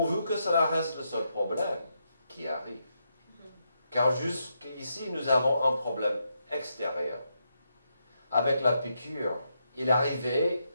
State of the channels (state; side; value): inverted; both; correlation -0.82